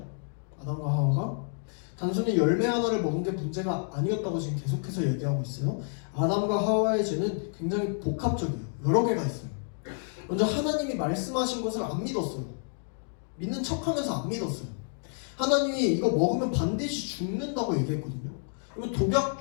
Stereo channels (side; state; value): right; silent; 58 dB below the other